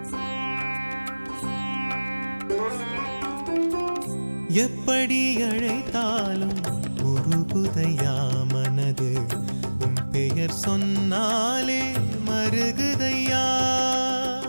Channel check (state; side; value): inverted; both; correlation -1.00